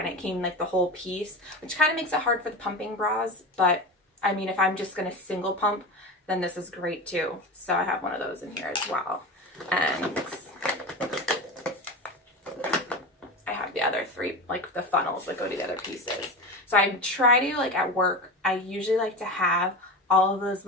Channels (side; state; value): both; normal; correlation 0.26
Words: it came like the whole piece, which kind of makes it hard for the pumping bras. But I mean, if I'm just going to single pump, then this is great too. So I have one of those in here as well. And I have the other 3, like the funnels that go to the other pieces. So I try to, like at work, I usually like to have all of those